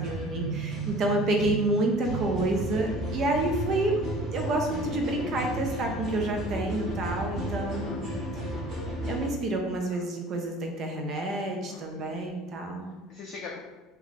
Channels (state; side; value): normal; both; correlation 0.47